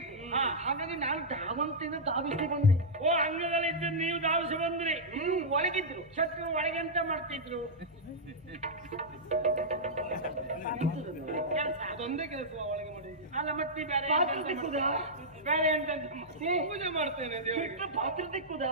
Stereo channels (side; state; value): both; normal; correlation -0.09